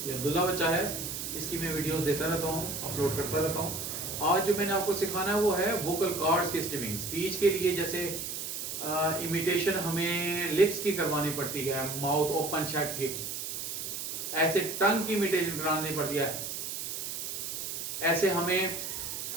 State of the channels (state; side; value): noise; right; hiss, 5 dB below the sound